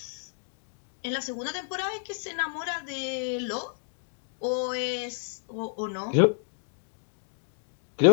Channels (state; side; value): silent; right; digital silence